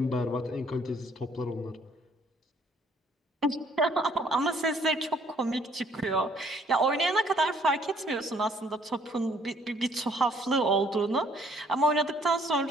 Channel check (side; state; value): both; normal; correlation 0.62